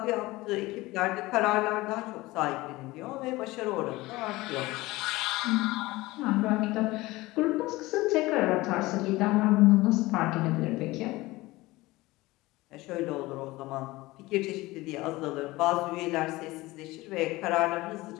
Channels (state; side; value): quieter; right; 19.9 dB